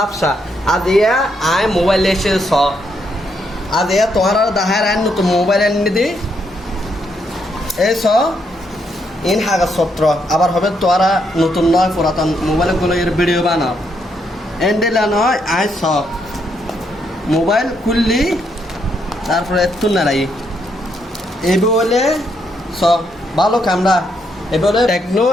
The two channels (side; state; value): both; normal; correlation 0.76